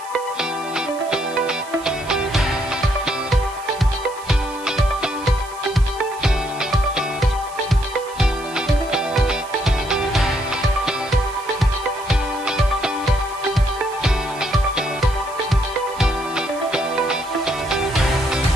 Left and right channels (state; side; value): noise; right; hiss, 19 dB below the sound